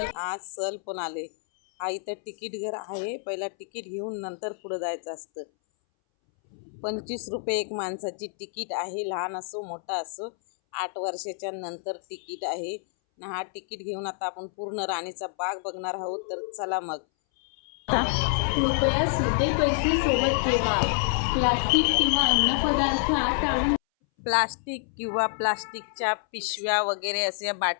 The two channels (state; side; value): silent; right; 60 dB below the other